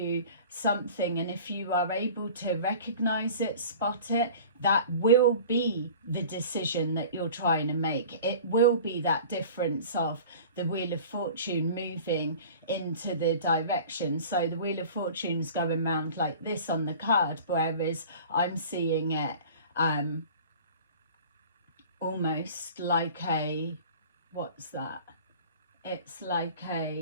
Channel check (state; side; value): inverted; both; correlation -0.42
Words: something, and if you are able to recognize it, spot it, that will be the decision that you're trying to make. It will be that difference of the Wheel of Fortune moving into the direction. So the Wheel of Fortune's going around like this on the card, whereas I'm seeing it almost like a, what's that? It's like